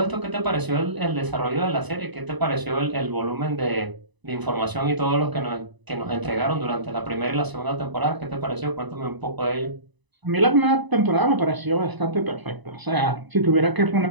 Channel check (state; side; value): late; left; 1.0 ms